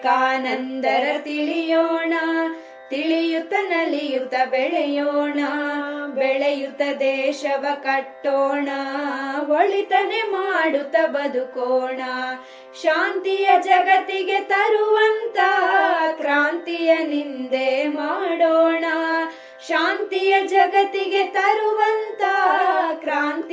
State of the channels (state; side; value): identical; both; correlation 1.00